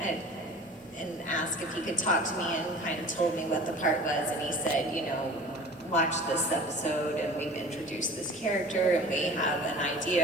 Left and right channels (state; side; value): normal; both; correlation 0.41